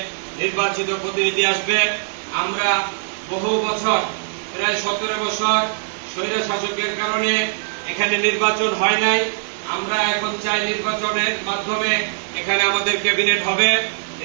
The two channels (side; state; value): left; silent; digital silence